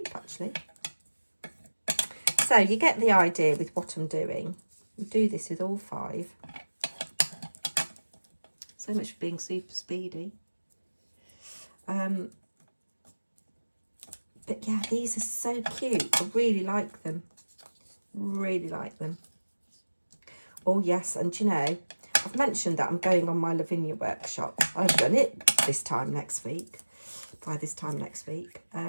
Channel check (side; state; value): both; inverted; correlation -1.00